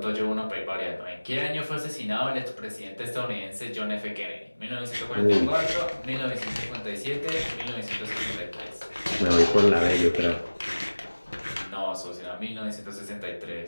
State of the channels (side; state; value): both; inverted; correlation -1.00